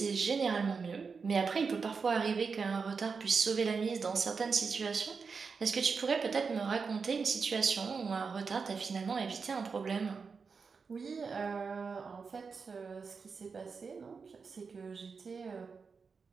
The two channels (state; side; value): quieter; left; 5.2 dB